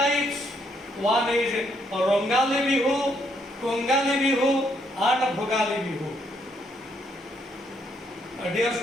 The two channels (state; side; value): normal; both; correlation 0.73